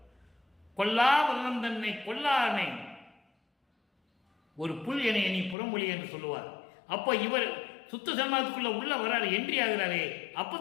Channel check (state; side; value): drops out; right; at 5.6 s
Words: கொல்லா விரதம் தன்னை கொல்லானை ஒரு புல் என எண்ணி புறம்பொழி என்று சொல்லுவார். அப்போ இவர் சுத்த சன்மார்க்கத்துக்குள்ள உள்ள வராரு, என்ட்ரி ஆகிறாரே. அப்போ